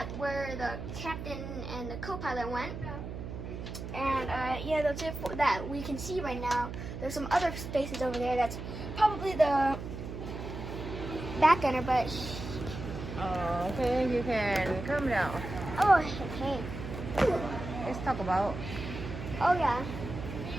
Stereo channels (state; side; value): noise; right; hum, 8 dB below the sound